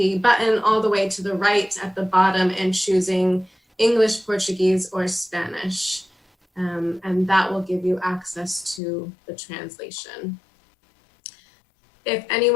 button all the way to the right at the bottom and choosing English, Portuguese, or Spanish. And that will give you access to the translation. If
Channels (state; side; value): drops out; right; at 8.8 s